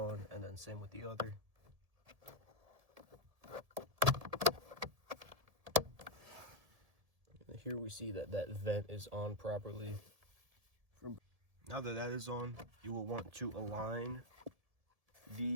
and then same with the other. And here we see that that vent is on properly. Now that that is on, you will want to align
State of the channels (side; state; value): left; late; 1.9 ms